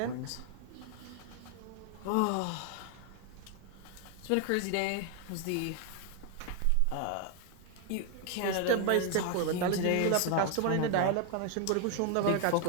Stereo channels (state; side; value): different; both; correlation 0.00